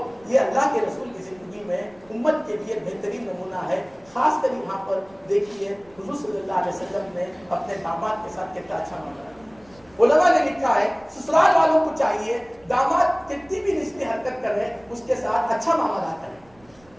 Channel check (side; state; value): right; noise; rumble, 29 dB below the sound